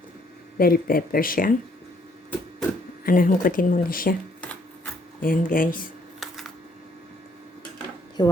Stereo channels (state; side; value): normal; both; correlation 0.66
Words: bell pepper siya. Hungkutin muna siya. Ayan, guys.